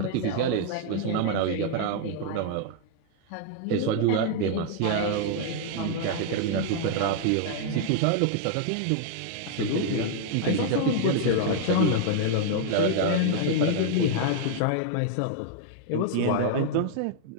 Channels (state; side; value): different; both; correlation -0.01